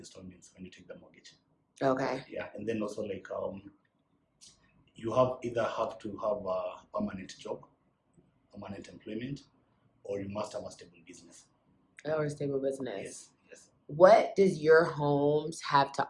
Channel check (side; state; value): both; identical; correlation 1.00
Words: when you take the mortgage. Okay. Yeah, and then also you either have to have a permanent job, permanent employment, or you must have a stable business. Or a stable business. Yes. What does your homes have to